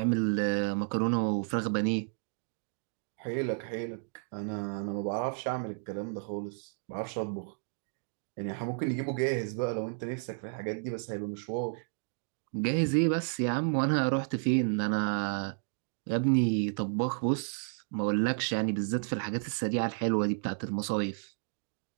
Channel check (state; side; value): silent; left; 56 dB below the other